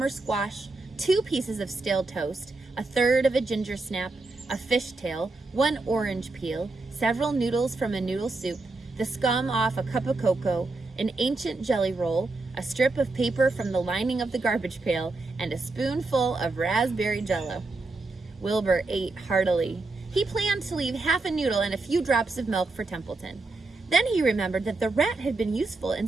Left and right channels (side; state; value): left; quieter; 3.3 dB